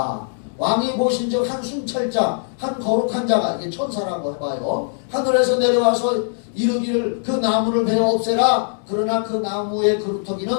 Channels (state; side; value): silent; right; digital silence